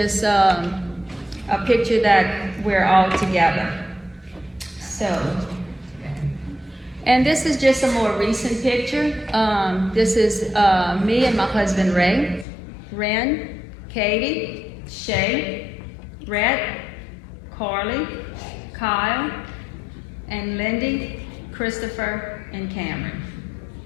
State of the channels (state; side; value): drops out; right; at 12.5 s